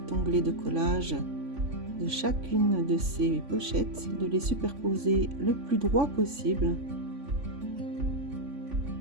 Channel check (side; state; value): left; late; 3.5 ms